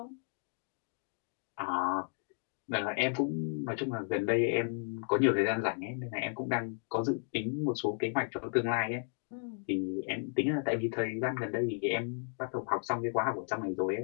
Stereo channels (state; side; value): silent; right; 55 dB below the other